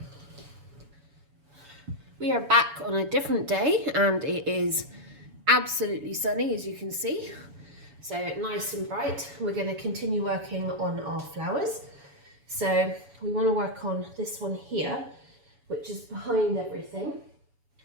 We are back on a different day and it is absolutely sunny, as you can see. So nice and bright. We're going to continue working on our flowers. So we want to work on this one here, which is behind everything.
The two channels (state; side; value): late; left; 7.0 ms